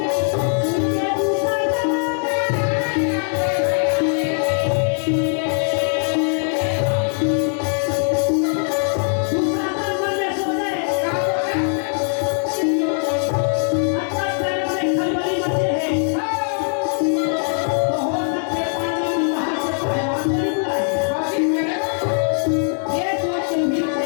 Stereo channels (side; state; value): right; silent; 56 dB below the other